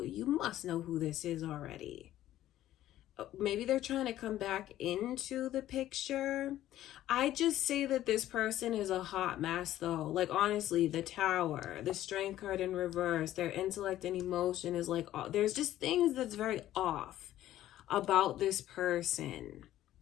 you must know who this is already. Maybe they're trying to come back into the picture. I just say that this person is a hot mess though. Like, honestly, the Tower, the Strength card in reverse, their intellect and emotion is like, there's just things that's very off about this person.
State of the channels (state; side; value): quieter; right; 13.4 dB